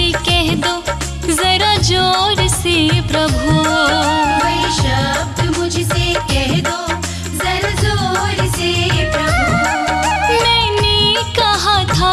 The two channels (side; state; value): both; identical; correlation 1.00